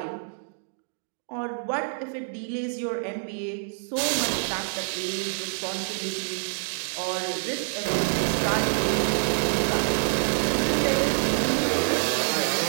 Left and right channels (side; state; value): left; silent; digital silence